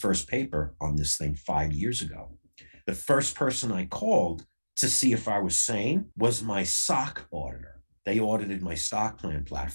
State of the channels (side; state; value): both; inverted; correlation -1.00